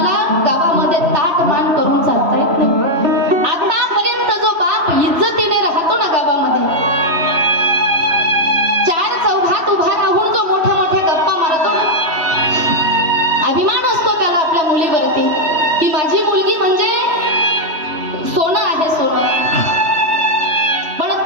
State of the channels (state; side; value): late; left; 3.1 ms